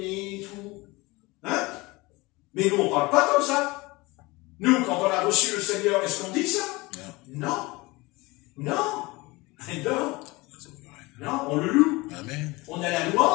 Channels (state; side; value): quieter; right; 22.8 dB